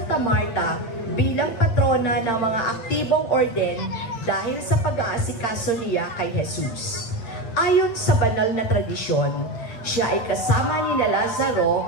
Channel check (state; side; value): late; right; 8.8 ms